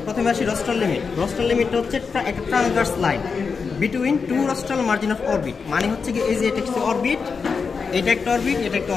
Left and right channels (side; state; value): right; quieter; 5.3 dB